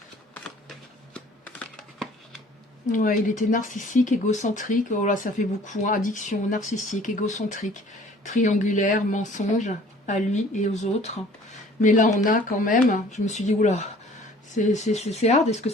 Ouais, il était narcissique, égocentrique. Oh là, ça fait beaucoup. Hein. Addiction, narcissique, égocentrique, triangulaire, mensonge à lui et aux autres. Mais là, on a quand même, je me suis dit, oula, c'est hard. Est-ce que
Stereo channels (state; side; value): normal; both; correlation 0.52